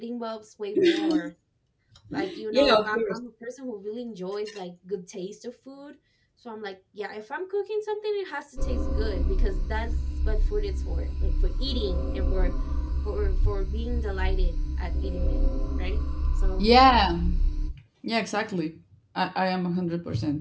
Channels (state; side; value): identical; both; correlation 1.00